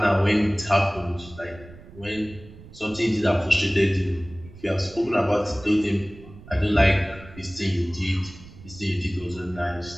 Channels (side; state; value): right; noise; rumble, 19 dB below the sound